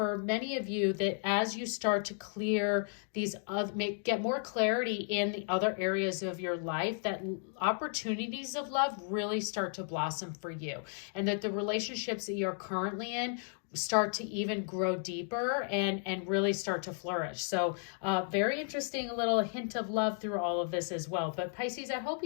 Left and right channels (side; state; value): right; silent; 55 dB below the other